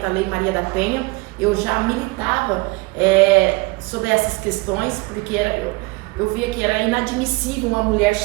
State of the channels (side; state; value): left; quieter; 25.1 dB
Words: a Lei Maria da Penha, eu já militava sobre essas questões, porque eu via que era inadmissível uma mulher